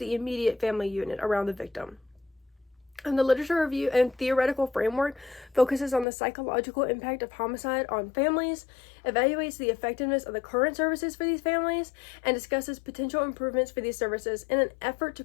immediate family unit around the victim. The literature review and theoretical framework focuses on the psychological impact of homicide on families, evaluates the effectiveness of the current services for these families, and discusses potential improvements for these services in an effort to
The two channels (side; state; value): right; drops out; at 6.1 s